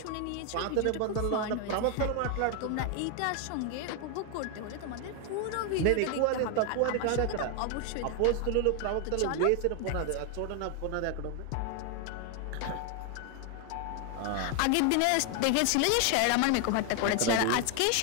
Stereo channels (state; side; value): different; both; correlation 0.00